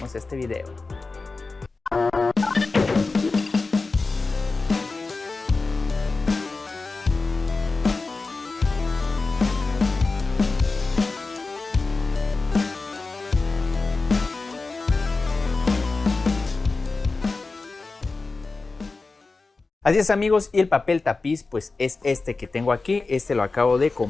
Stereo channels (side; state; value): right; quieter; 3.8 dB